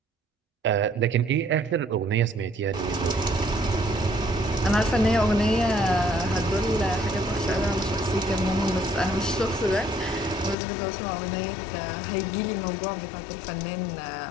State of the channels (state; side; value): drops out; right; at 10.6 s